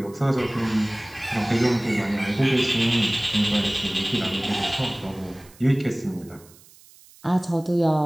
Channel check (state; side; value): noise; right; hiss, 25 dB below the sound